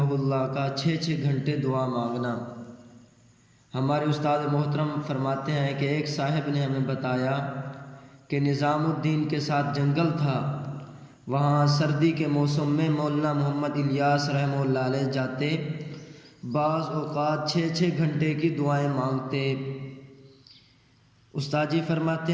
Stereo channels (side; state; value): both; identical; correlation 1.00